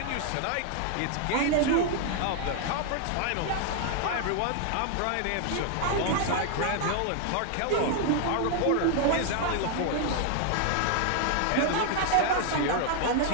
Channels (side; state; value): both; different; correlation 0.00